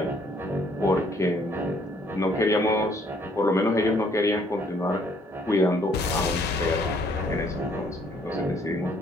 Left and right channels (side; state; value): both; normal; correlation 0.64